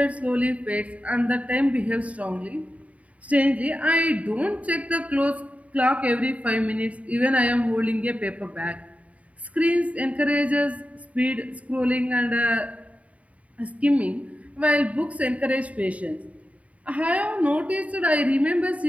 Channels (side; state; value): left; late; 0.068 ms